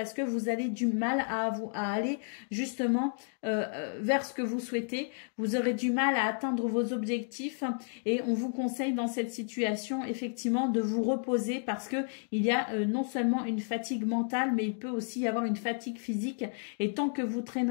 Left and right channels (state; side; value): silent; right; 57 dB below the other